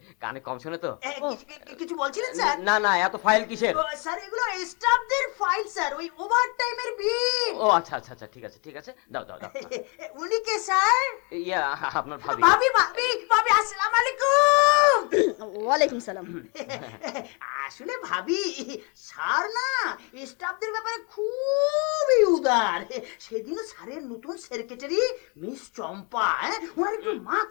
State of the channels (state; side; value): quieter; right; 32.8 dB